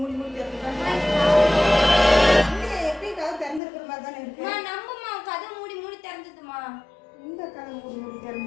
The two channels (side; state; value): right; drops out; at 3.6 s